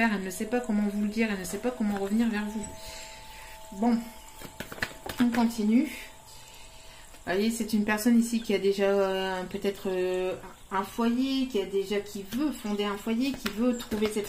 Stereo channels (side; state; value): both; identical; correlation 1.00